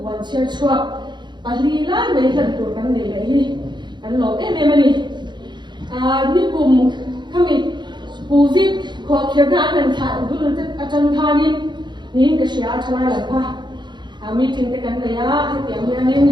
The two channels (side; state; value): left; late; 0.22 ms